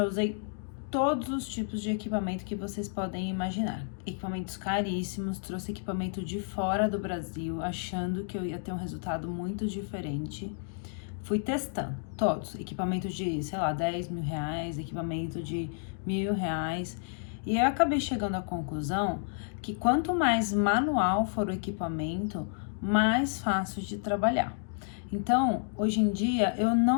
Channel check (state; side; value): silent; right; digital silence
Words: usei todos os tipos de equipamento que vocês podem imaginar. Equipamentos caríssimos, trouxe equipamento de fora do Brasil, achando que eu ia ter um resultado muito diferente. Fui testando todos, equipamento de, sei lá, 10 mil reais, equipamento de R$ 1.000. E eu acabei chegando à conclusão que quanto mais manual for o equipamento, mais fácil de trabalhar. Então, hoje em dia, eu